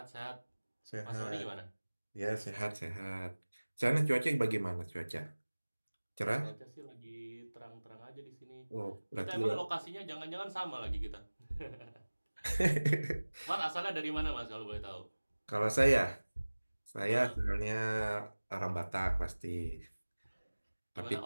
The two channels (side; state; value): both; inverted; correlation -1.00